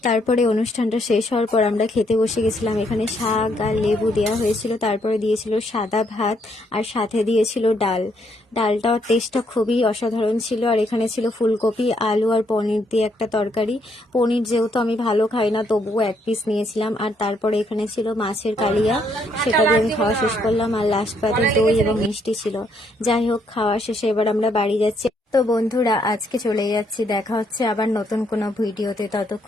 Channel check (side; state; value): both; normal; correlation 0.72